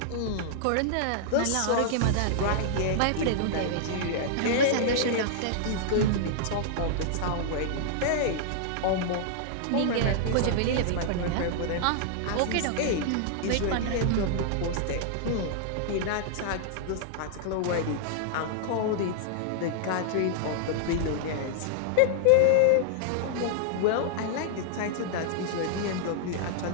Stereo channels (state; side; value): different; both; correlation -0.01